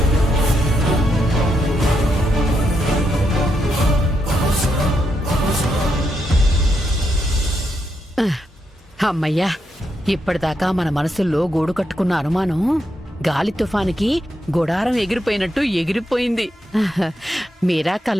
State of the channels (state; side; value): normal; both; correlation 0.81